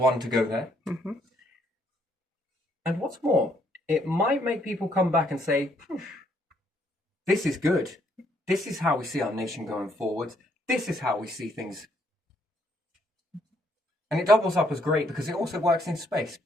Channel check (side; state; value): both; normal; correlation 0.70